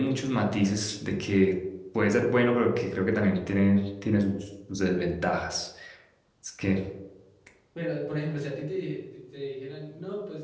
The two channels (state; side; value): identical; both; correlation 1.00